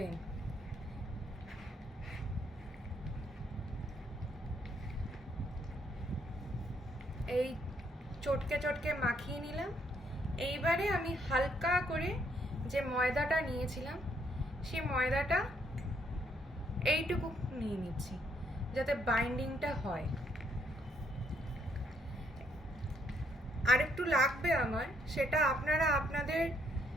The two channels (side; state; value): both; normal; correlation 0.71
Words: এই চটকে চটকে মাখিয়ে নিলাম। এইবারে আমি হালকা করে যে ময়দাটা নিয়েছিলাম, সেই ময়দাটা এইটুকু নিয়ে নিচ্ছি, যাতে বাইন্ডিংটা হয়। আরেকটু লাগবে আমার, সেটা আপনারা আপনাদের